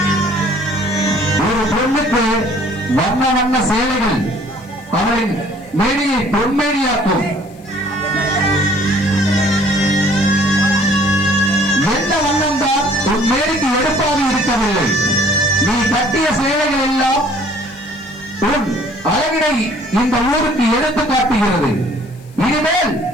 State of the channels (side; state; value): left; noise; hiss, 29 dB below the sound